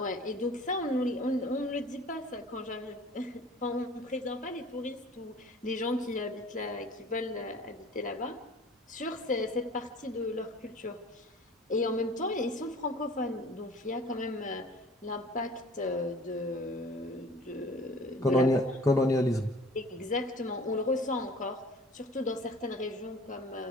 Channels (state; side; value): normal; both; correlation 0.47